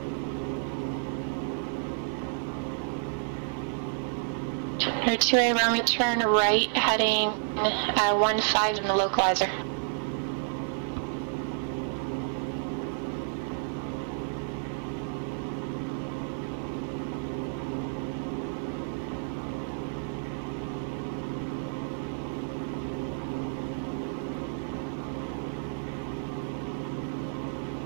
IFR clearance. Clear 2A Romeo, turn right, heading 15 in the localizer. Right turn to 150 to intercept localizer 28 Romeo. Alright, standard right turn to the right. We see the localizer coming in if you look down there at the VOR 1 indicator. So we're going to turn to our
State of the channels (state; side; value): silent; left; digital silence